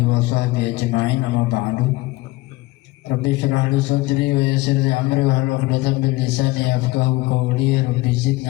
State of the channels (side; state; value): right; quieter; 20.3 dB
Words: wa sahbihi ajma'in, amma ba'du. Rabbi shrah li sadri wa yassir li amri wa hlul 'uqdatam min lisani yafqahu qawli. Rabbi